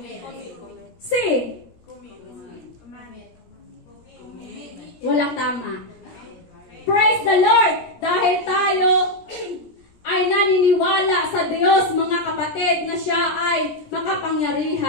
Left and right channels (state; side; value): late; right; 17 ms